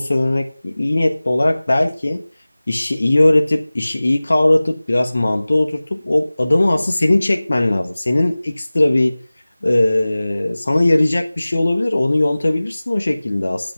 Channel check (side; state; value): both; inverted; correlation -0.99